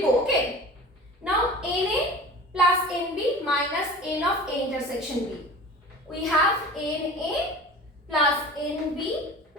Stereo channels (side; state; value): both; normal; correlation 0.38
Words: go. Okay. Now NA plus NB minus N of A intersection B. We have NA plus NB